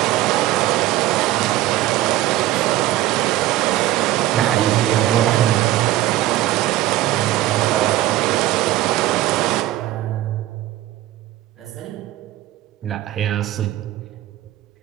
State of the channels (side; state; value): left; quieter; 15.0 dB